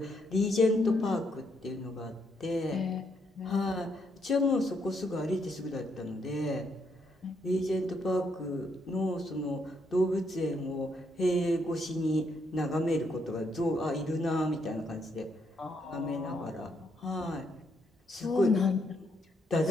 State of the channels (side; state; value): both; normal; correlation 0.75